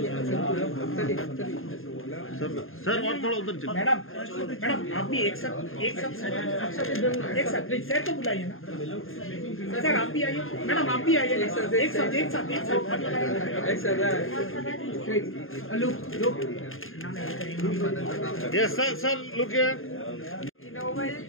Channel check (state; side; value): late; right; 0.60 ms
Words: सर सर और थोड़ा उधर चलो। मैडम मैडम आप भी एक साथ प्लीज सर को बुलाइए ना सर आप भी आइए मैडम आप भी आइए एक साथ look yes sir sir look here Novel